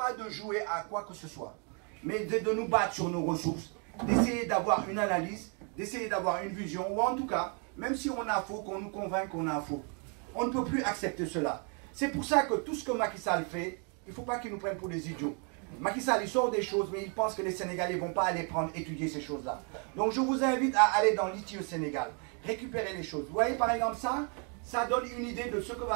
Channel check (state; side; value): quieter; left; 38.1 dB